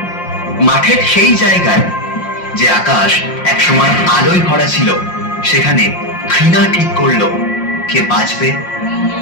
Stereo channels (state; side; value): late; right; 5.6 ms